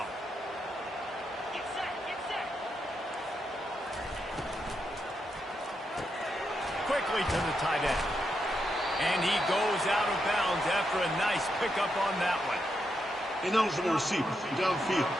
Quickly to the tight end. And he goes out of bounds after a nice pickup on that one. Ineligible receiver, downfield,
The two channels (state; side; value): normal; both; correlation 0.83